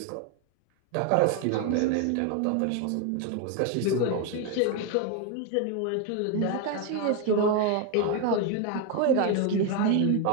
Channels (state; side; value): different; both; correlation 0.01